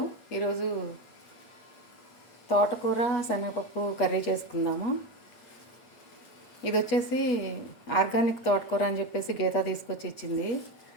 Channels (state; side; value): late; right; 8.3 ms